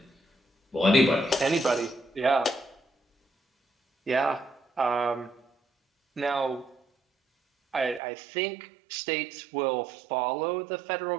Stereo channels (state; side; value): drops out; left; at 8.0 s